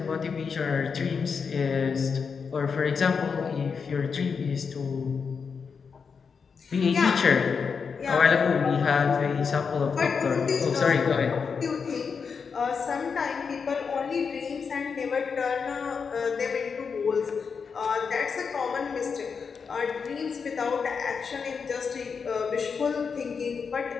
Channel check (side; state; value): right; quieter; 5.8 dB